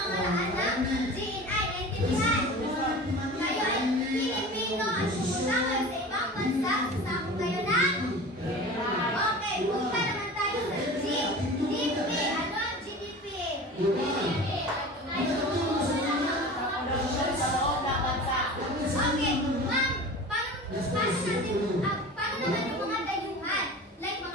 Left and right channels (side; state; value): both; normal; correlation 0.36